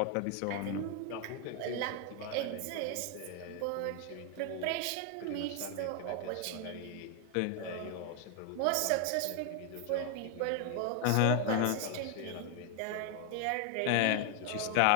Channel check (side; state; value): both; different; correlation 0.00